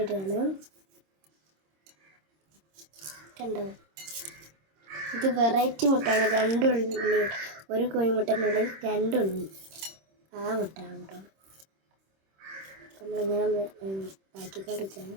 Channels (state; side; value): late; left; 26 ms